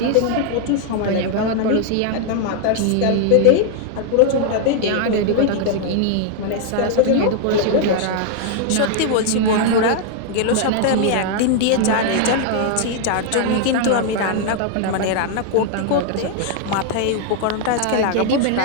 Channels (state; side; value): different; both; correlation 0.00